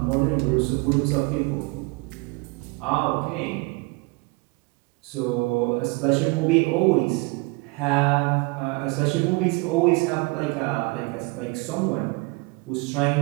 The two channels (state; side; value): quieter; left; 27.4 dB